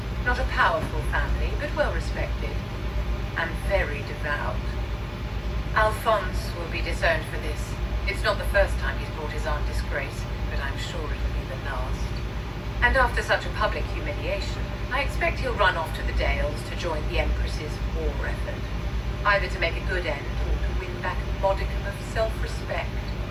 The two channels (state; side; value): identical; both; correlation 1.00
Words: Not a powerful family, but well respected. And very devout. Alphonse will be disowned for this. It's not the first time he's brought his aunt disgrace, but I'm sure it'll be the last. And after such a public humiliation, I expect he'll run off to the Dales to join the Empress's war effort. Either to make a good end, or to win back a modicum of self-respect.